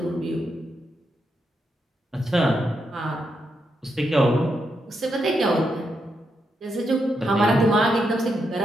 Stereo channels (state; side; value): normal; both; correlation 0.82